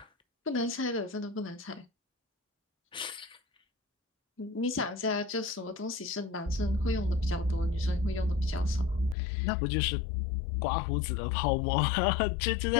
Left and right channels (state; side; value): drops out; right; at 9.2 s